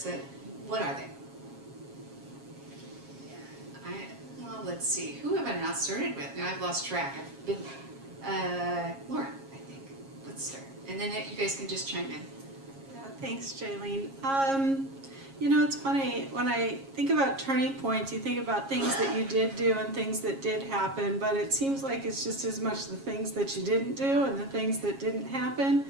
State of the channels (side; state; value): left; late; 7.3 ms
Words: what are they? Well, let's see. Who have I not started with? Now I've lost track. I've been Laura, I think. Let's start. And then you guys can just chime in. Yeah, thanks, Jalene. It's funny, when I think about turning points, you think about things that you did do and things that did happen, but it seems like it's just as much the things that you didn't do and the things that didn't happen,